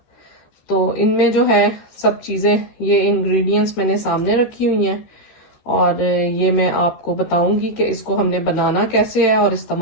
तो इनमें जो है सब चीज़ें, ये इंग्रेडिएंट्स मैंने सामने रखी हुई हैं और ये मैं आपको बताऊंगी कि इसको हमने बनाना कैसे है और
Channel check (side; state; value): right; late; 13 ms